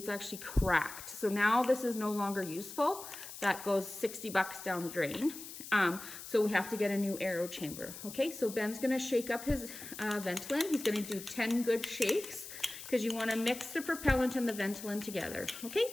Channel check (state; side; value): noise; left; hiss, 12 dB below the sound